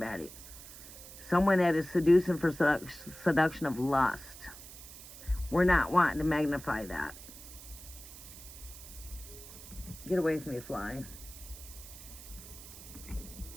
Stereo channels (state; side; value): noise; right; hiss, 15 dB below the sound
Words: Someone that is seducing for seduction of lust. We're not wanting to magnify that. Get away from me, fly.